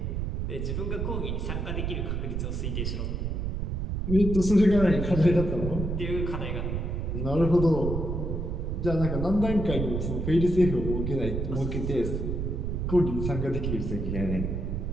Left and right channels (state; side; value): noise; right; rumble, 2 dB below the sound